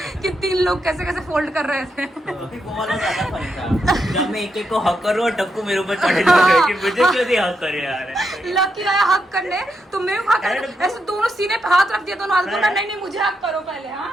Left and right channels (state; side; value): normal; both; correlation 0.82